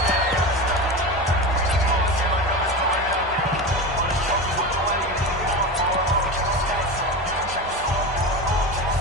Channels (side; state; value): both; normal; correlation 0.24